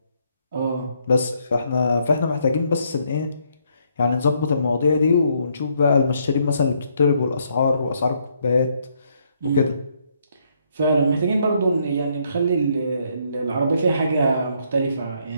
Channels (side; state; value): both; inverted; correlation -0.72